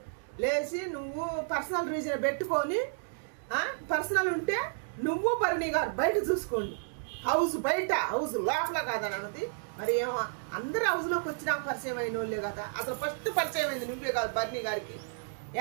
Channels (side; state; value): left; silent; digital silence